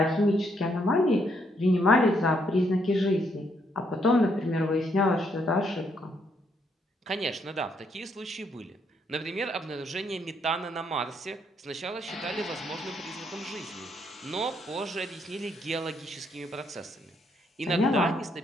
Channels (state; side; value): normal; both; correlation 0.73